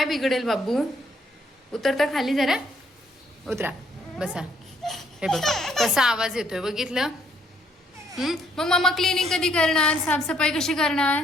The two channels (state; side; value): normal; both; correlation 0.68